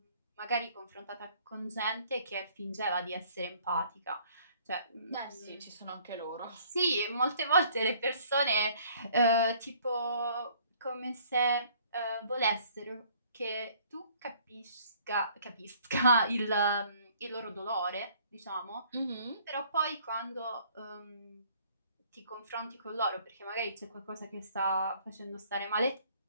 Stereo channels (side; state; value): both; inverted; correlation -0.59